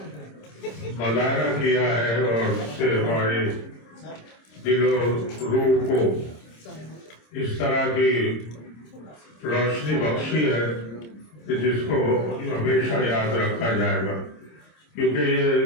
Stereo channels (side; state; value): right; late; 26 ms